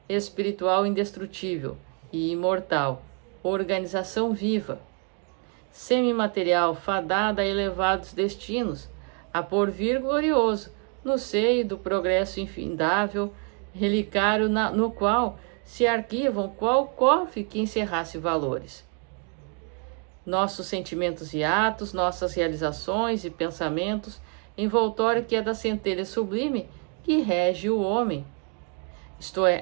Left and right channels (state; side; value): quieter; left; 38.2 dB